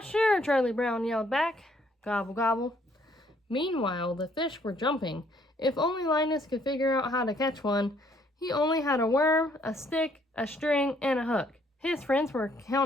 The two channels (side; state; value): both; normal; correlation 0.66